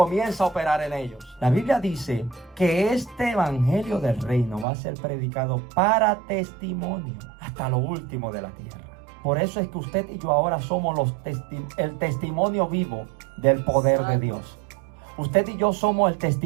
a operar en ellos. La Biblia dice que este evangelio del reino va a ser predicado para testimonio hasta lo último de la tierra. Por eso es que usted y yo ahora somos el testimonio vivo del poder de Dios. Usted y yo somos el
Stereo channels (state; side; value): drops out; left; at 4.7 s